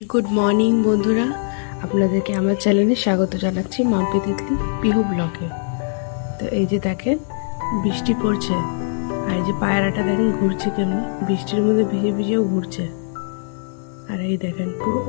Good morning বন্ধুরা, আপনাদেরকে আমার চ্যানেলে স্বাগত জানাচ্ছি মাম্পি তিতলি পিহু ব্লগে। তো এই যে দেখেন বৃষ্টি পড়ছে, আর এই যে পায়রাটা দেখেন ঘুরছে কেমনি, বৃষ্টির মধ্যে ভিজে ভিজেও ঘুরছে। আর এই দেখেন পুরো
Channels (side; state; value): right; silent; 65 dB below the other